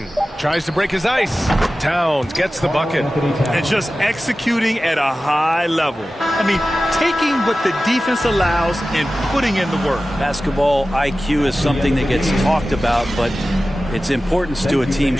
Tries to break his ice. Towns gets the bucket. And just executing at a high level. I mean, taking what the defense allows and putting in the work. Basketball IQ is something that gets talked about, but its importance to a team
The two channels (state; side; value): normal; both; correlation 0.95